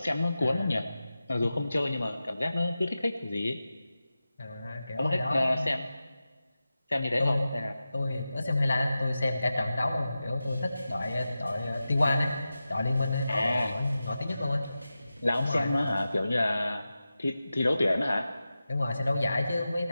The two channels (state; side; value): inverted; both; correlation -0.93